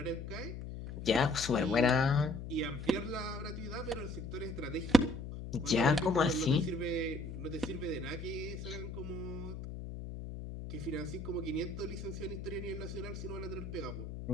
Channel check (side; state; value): left; noise; hum, 8 dB below the sound